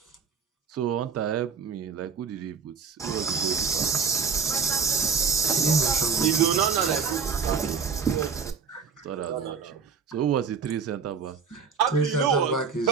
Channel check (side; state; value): left; quieter; 5.9 dB